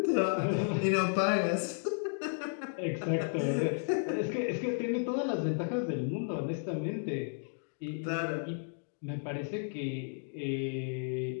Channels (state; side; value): silent; right; digital silence